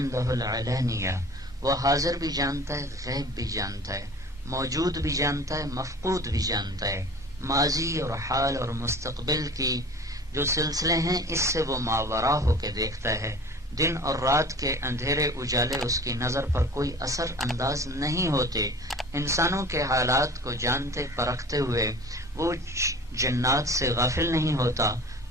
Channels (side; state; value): both; normal; correlation 0.42